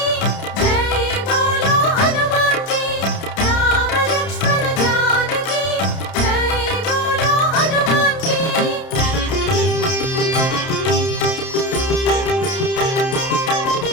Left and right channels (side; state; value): right; late; 30 ms